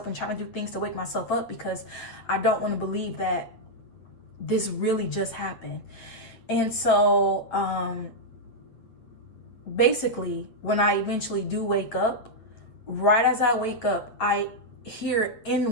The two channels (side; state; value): right; late; 8.7 ms